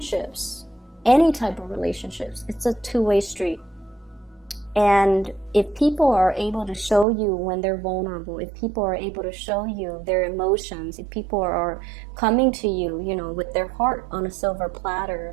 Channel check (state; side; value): drops out; left; at 7.1 s